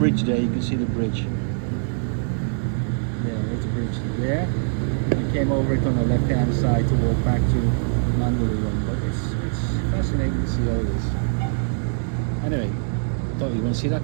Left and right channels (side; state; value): left; silent; digital silence